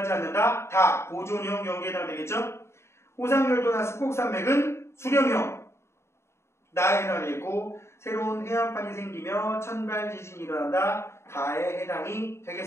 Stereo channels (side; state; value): right; late; 0.13 ms